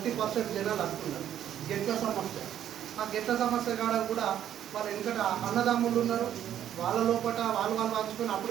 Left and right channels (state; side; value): quieter; left; 10.6 dB